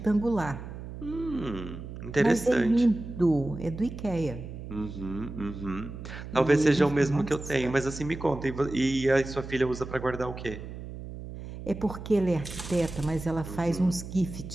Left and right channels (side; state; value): right; noise; hum, 11 dB below the sound